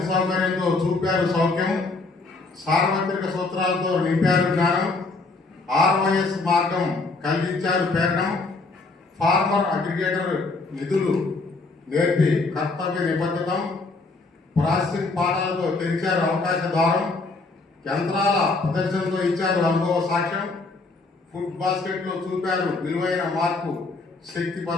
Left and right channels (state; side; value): quieter; right; 3.6 dB